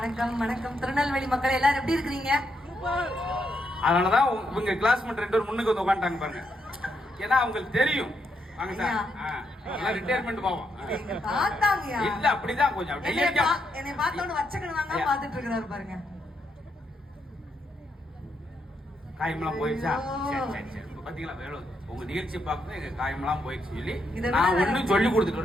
வணக்கம் திருநெல்வேலி மக்கள் எல்லாரும் எப்படி இருக்கிறீங்க? அதனாலதான் இவங்க கிளாஸ்மேட் 2 பேர் முன்னுக்கு வந்து உட்காந்துட்டாங்க பாருங்க. ஏன்னா அவங்களுக்கு தெரியும் வாங்க சார் ரிட்டையர்மெண்ட் போவோம் இல்ல அப்படிதான் கொஞ்சம் என்னை பார்த்தோன்னு வச்சக்கணுவாங்க பாத்துட்டு இருக்கிறாரு பாருங்க. காயமெல்லாம் போயிடுச்சா? பாத்தீங்களா வேணும் உங்க நிகழ்ச்சி பார்க்கணும் எங்க காயமெல்லாம் போயிடுச்சு சொல்லி நான் ஒண்ணும் சொல்லி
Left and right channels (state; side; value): normal; both; correlation 0.79